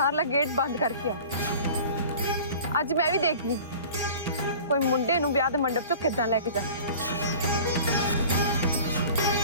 गेट बंद करके आओ। अज मैं भी देखनी कोई मुंडे नूं ब्याह दे मंडप चों किदां लेके जा।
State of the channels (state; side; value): inverted; both; correlation -0.42